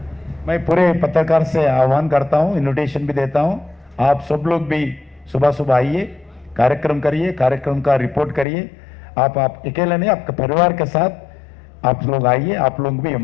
मैं पूरे पत्रकार से आह्वान करता हूं, इन्विटेशन भी देता हूं, आप सब लोग भी सुबह आइए, कार्यक्रम करिए, कार्यक्रम का रिपोर्ट करिए. आप अकेले नहीं, आपके परिवार के साथ आप लोग आइए, आप लोग भी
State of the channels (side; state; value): right; drops out; at 8.5 s